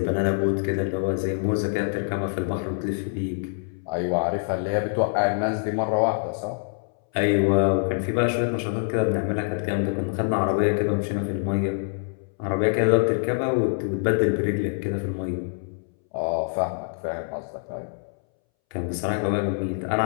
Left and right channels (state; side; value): silent; right; 62 dB below the other